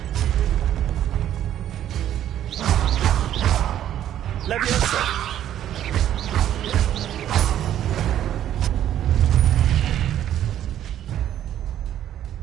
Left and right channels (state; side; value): quieter; left; 11.3 dB